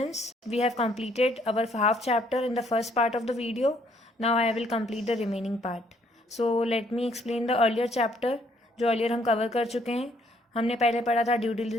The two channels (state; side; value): normal; both; correlation 0.67